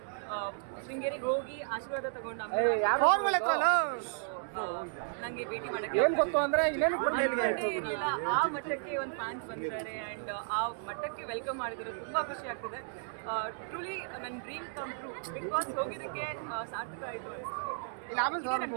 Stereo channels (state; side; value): silent; left; digital silence